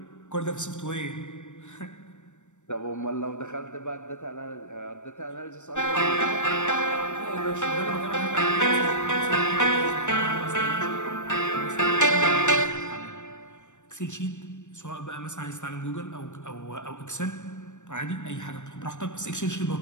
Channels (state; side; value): late; right; 0.84 ms